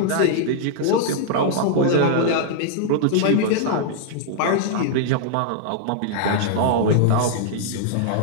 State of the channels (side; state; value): both; different; correlation -0.01